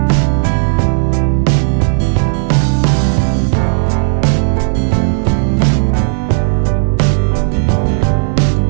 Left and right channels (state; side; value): silent; left; 59 dB below the other